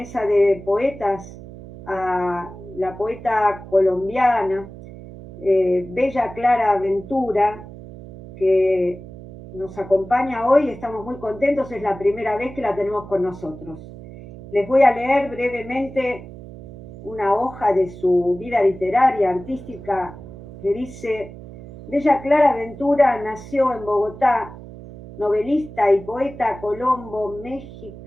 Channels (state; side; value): noise; right; hum, 15 dB below the sound